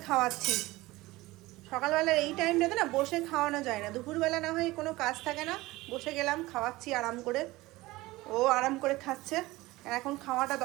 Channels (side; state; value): left; quieter; 19.5 dB